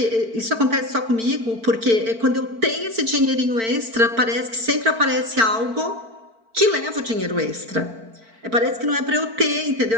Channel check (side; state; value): left; late; 4.5 ms